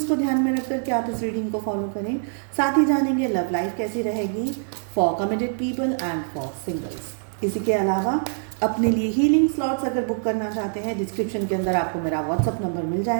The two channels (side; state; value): left; silent; 62 dB below the other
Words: को ध्यान में रख करके आप इस रीडिंग को फॉलो करें। साथ ही जानेंगे लव लाइफ कैसी रहेगी for committed people and for singles. इसी के अलावा अपने लिए हीलिंग स्लॉट्स अगर बुक करना चाहते हैं, डिस्क्रिप्शन के अंदर आपको मेरा व्हाट्सअप नंबर मिल